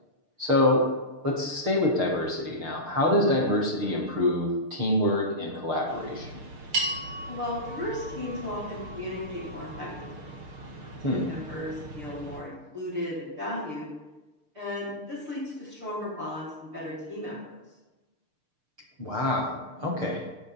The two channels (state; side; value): late; left; 6.6 ms